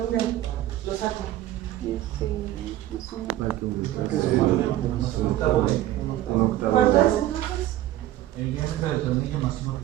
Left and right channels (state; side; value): quieter; left; 14.1 dB